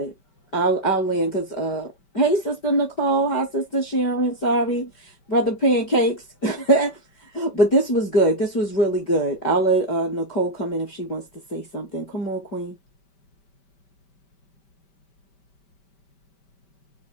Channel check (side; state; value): right; late; 5.1 ms